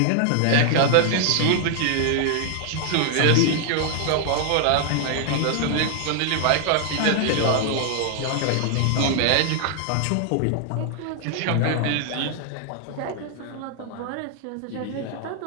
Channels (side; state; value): both; different; correlation 0.00